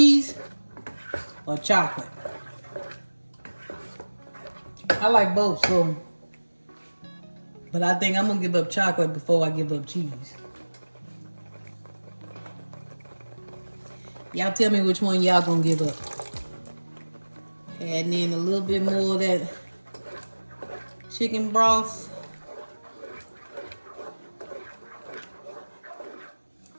or chocolate? I like both, so, but I think I'm gonna give up chocolate before I give up cheese. Y'all tell me which one y'all gonna give up. Adding in a little bit more of that chicken broth.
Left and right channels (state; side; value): inverted; both; correlation -1.00